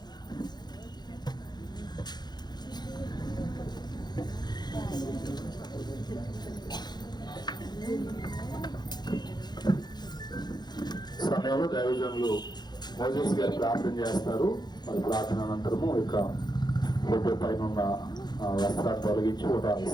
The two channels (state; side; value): late; right; 0.21 ms